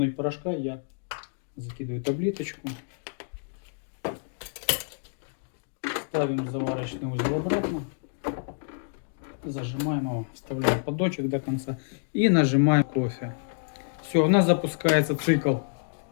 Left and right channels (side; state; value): right; silent; digital silence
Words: порошка. Я закидываю таблеточку. Ставим заварочный узел обратно. Зажимаем его, вставляем поддончик до конца и нажимаем кофе. Все, у нас запускается цикл